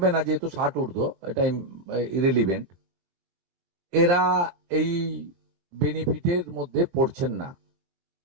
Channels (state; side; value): late; left; 23 ms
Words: না যেহেতু 60 ঊর্ধ্ব, এটা ইরেলিভেন্ট, এরা এই বেনিফিটের মধ্যে পড়ছেন না।